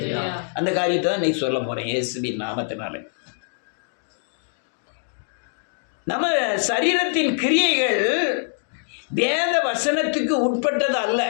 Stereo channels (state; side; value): silent; right; digital silence